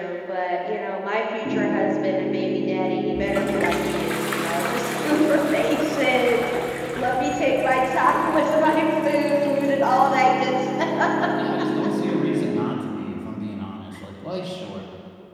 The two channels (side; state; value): both; identical; correlation 1.00